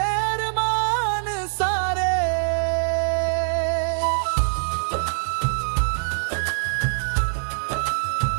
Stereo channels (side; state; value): left; silent; 63 dB below the other